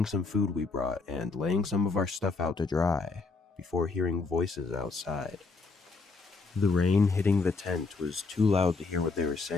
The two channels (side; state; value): right; quieter; 4.0 dB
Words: some food we brought and laying some of our stuff out to dry, before hearing voices outside. The rain hitting the tent was too loud to hear what they were